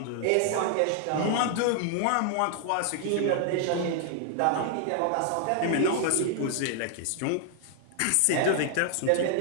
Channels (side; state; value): both; different; correlation 0.00